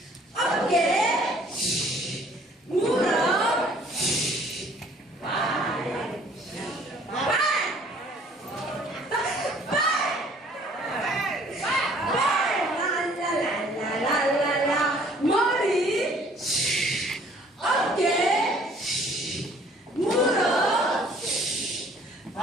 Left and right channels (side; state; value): both; normal; correlation 0.57